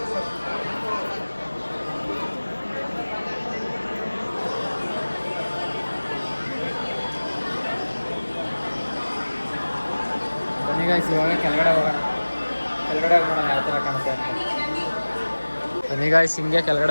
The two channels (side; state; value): both; inverted; correlation -1.00